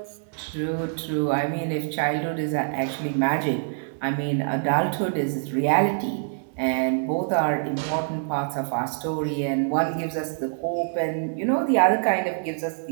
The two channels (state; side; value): silent; left; digital silence